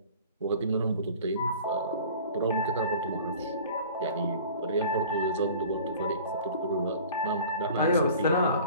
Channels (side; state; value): both; inverted; correlation -0.45